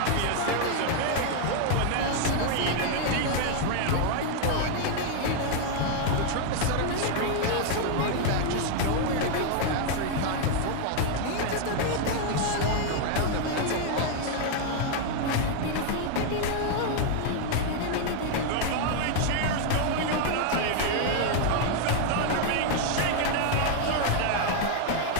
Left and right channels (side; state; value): both; different; correlation 0.00